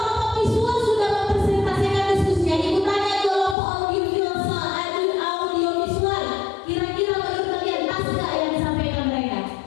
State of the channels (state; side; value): drops out; right; at 3.6 s